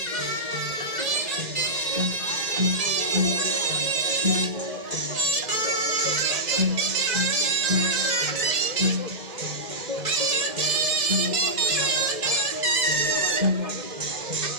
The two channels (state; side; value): late; left; 2.1 ms